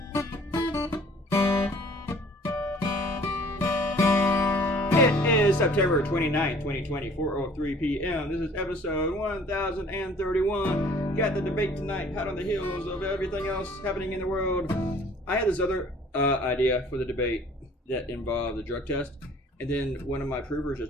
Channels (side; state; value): both; normal; correlation 0.53